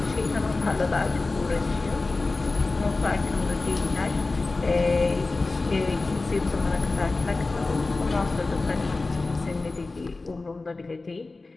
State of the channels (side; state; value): right; quieter; 3.5 dB